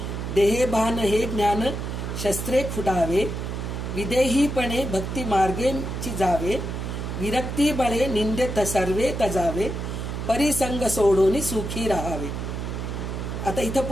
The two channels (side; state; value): right; noise; hum, 4 dB below the sound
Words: देहे भान हे ज्ञान शस्त्रे खुडावे, विदेहीपणे भक्ती मार्गेची जावे, विरक्ती बळे निंदे सर्वे तजावे, परिसंग सोडून सुखी राहावे. आता इथं